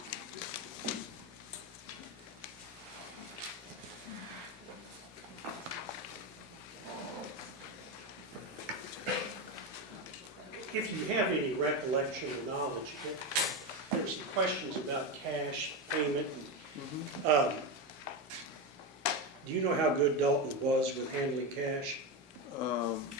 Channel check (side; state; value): both; normal; correlation 0.14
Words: If you have any recollection or knowledge, there were some questions about cash payment. And, do you know how good Dalton was with handling cash?